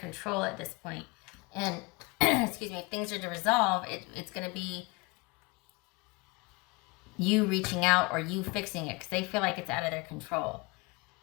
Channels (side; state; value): right; quieter; 26.4 dB